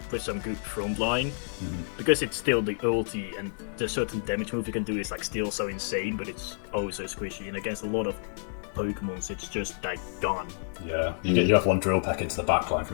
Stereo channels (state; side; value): silent; right; digital silence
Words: with some good front line, because it's still the ulti and the certain damage move you can do is like still so insane, but it's so squishy, and against a lot of Pokemons it's just like gone. Yeah, you have one drill pack into the backline